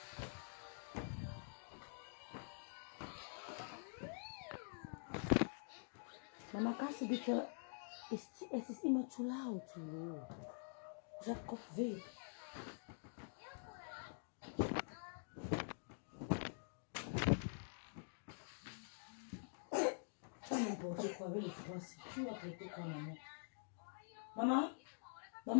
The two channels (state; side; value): silent; right; digital silence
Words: Maman, quand c'est dit que c'est immature ou tout. Jacob V. Tu vas n'importe quoi avec les Français. Tu vas traiter quoi, maman? Maman?